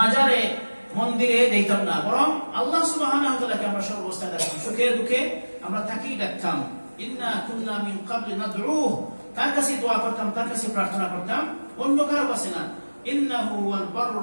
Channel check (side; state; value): both; inverted; correlation -1.00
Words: মন্দিরে দিতাম না, বরং আল্লাহ সুবহানাহু ওয়া তাআলাকে আমরা সর্বস্থায় ডাকতাম, সুখে দুঃখে আমরা তাকেই ডাকতাম। ইন্না কুন্না মিন ক্বাবলি নাদউহু, তার কাছে দোয়া করতাম, তার কাছে প্রার্থনা করতাম, অন্য কারো কাছে না। ইন্নাহু ওয়াল